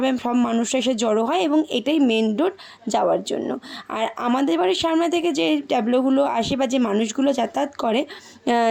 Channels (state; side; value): identical; both; correlation 1.00